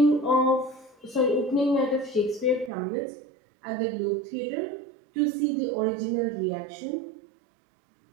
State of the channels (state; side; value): drops out; left; at 2.7 s